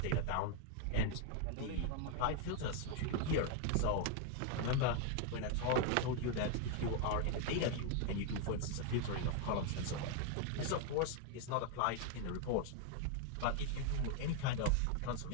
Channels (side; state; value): both; different; correlation 0.00